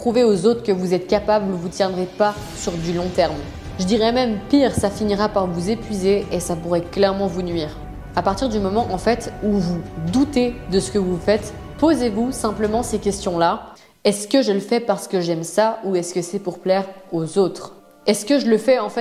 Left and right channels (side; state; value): both; identical; correlation 1.00